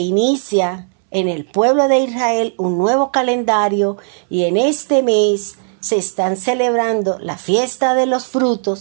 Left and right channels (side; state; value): left; silent; 68 dB below the other